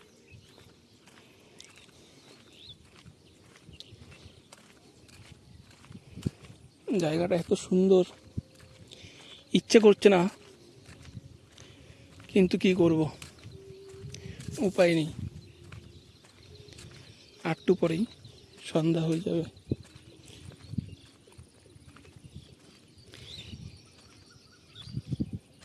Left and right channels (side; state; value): both; identical; correlation 1.00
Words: জায়গাটা এত সুন্দর, ইচ্ছে করছে না, কিন্তু কি করব, উপায় নেই। একটু পরেই সন্ধ্যা হয়ে যাবে।